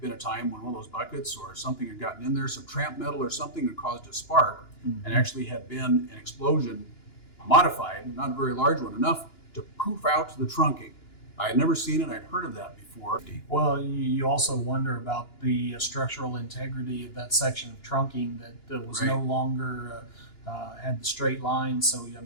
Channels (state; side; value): late; right; 2.9 ms